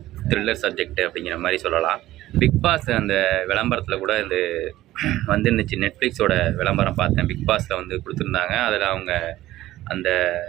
த்ரில்லர் சப்ஜெக்ட் அப்படிங்கிற மாதிரி சொல்லலாம். பிக் பாஸ் அந்த விளம்பரத்தில் கூட இந்த வந்துருந்துச்சு. நெட்ஃப்ளிக்ஸோட விளம்பரம் பார்த்தேன். பிக் பாஸில் வந்து கொடுத்துருந்தாங்க. அதில் அவங்க அந்த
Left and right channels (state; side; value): quieter; left; 15.3 dB